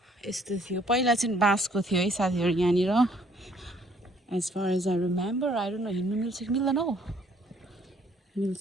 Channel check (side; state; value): both; normal; correlation 0.63